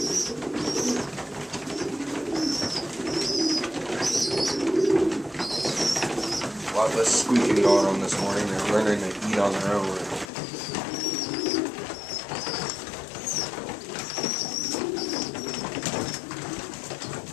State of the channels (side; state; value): right; drops out; at 10.3 s